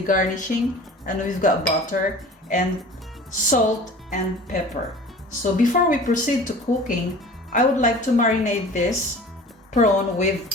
garnishing, and we've got butter and salt and pepper. So before we proceed to cooking, I would like to marinate this prawn with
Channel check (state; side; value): normal; both; correlation 0.42